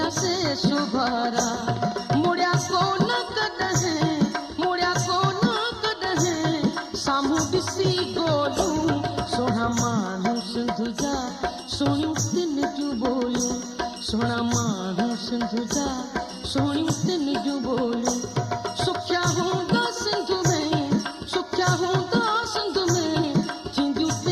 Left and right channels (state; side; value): identical; both; correlation 1.00